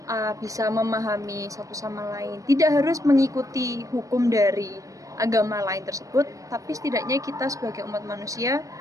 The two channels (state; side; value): late; left; 0.16 ms